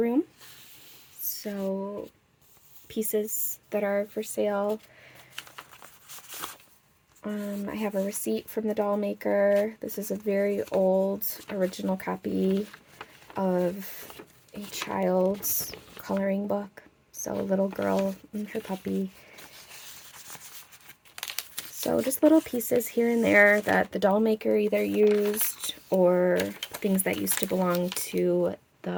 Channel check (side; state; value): both; identical; correlation 1.00